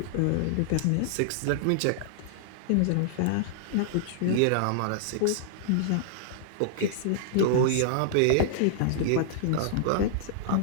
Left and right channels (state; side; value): different; both; correlation -0.01